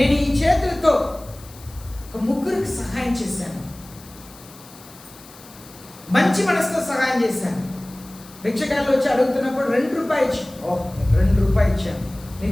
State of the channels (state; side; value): noise; left; hiss, 21 dB below the sound